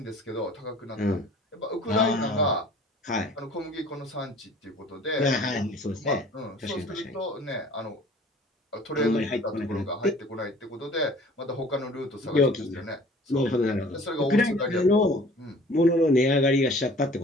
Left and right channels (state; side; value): normal; both; correlation 0.49